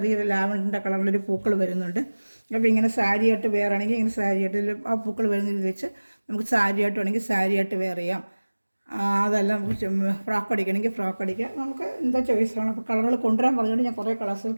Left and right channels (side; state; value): both; inverted; correlation -1.00